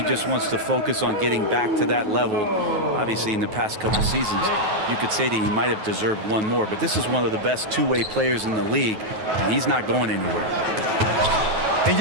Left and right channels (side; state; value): left; late; 9.3 ms